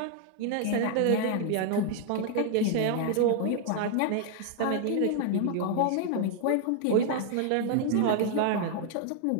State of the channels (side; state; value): both; different; correlation 0.00